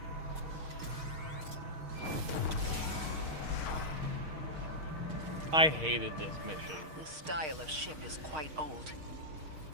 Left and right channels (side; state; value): left; late; 6.4 ms